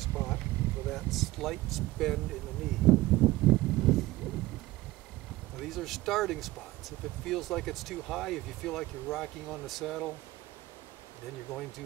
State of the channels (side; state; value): left; quieter; 18.1 dB